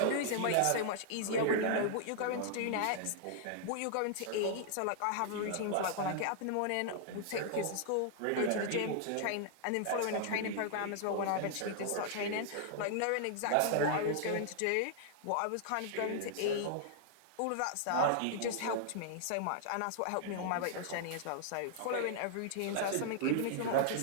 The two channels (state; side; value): different; both; correlation -0.01